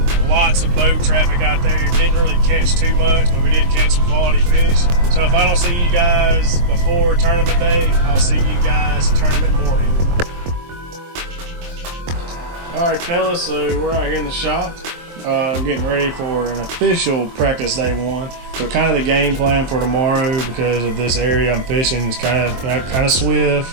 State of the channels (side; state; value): left; late; 23 ms